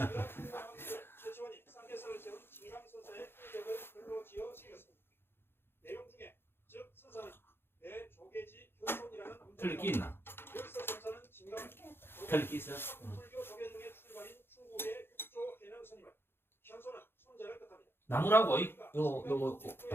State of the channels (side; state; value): right; late; 0.11 ms